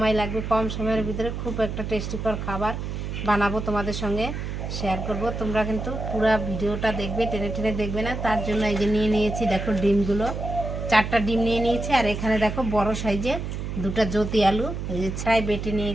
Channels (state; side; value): noise; right; hum, 5 dB below the sound